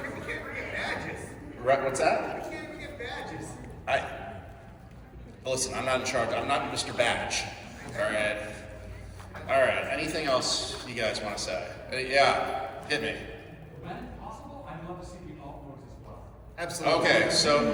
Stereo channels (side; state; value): both; identical; correlation 1.00